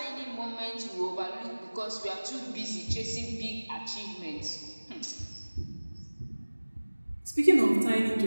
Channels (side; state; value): both; inverted; correlation -1.00